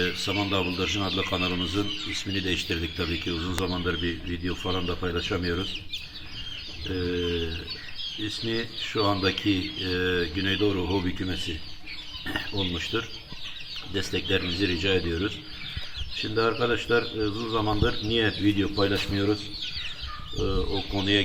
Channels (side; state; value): both; identical; correlation 1.00